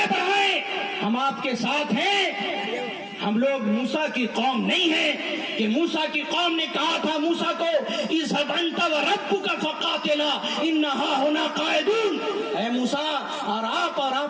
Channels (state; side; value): identical; both; correlation 1.00